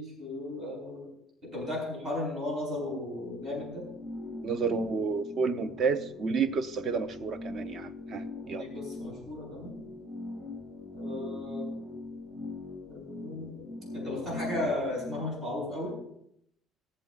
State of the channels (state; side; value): normal; both; correlation 0.52